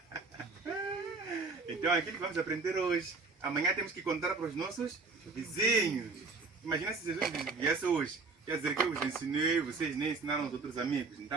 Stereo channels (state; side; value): quieter; left; 4.1 dB